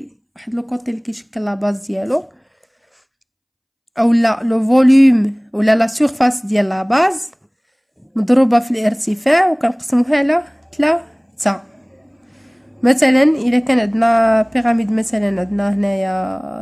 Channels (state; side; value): identical; both; correlation 1.00